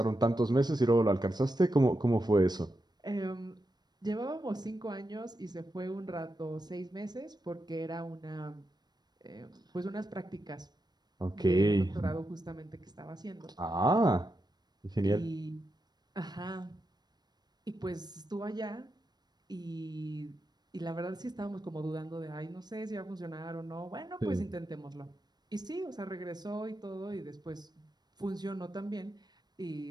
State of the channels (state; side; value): late; left; 0.20 ms